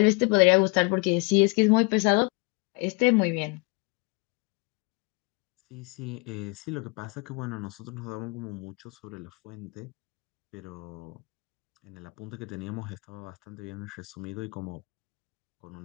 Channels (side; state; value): right; quieter; 29.8 dB